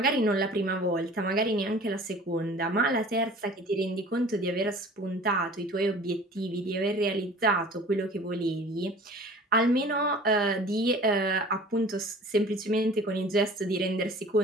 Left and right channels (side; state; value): both; normal; correlation 0.45